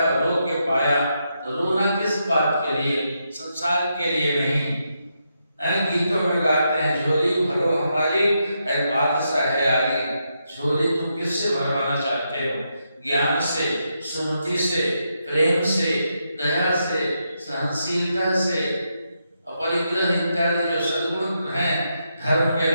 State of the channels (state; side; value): inverted; both; correlation -0.82